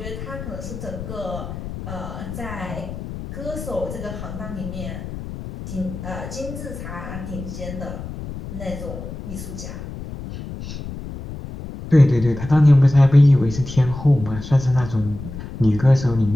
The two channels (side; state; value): left; noise; rumble, 10 dB below the sound